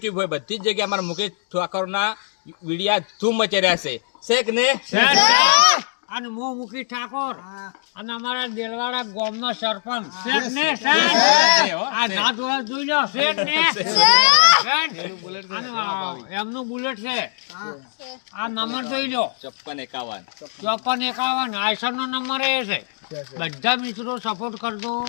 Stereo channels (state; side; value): silent; right; 65 dB below the other